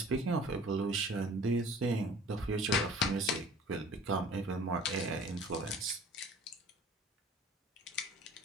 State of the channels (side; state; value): both; normal; correlation 0.47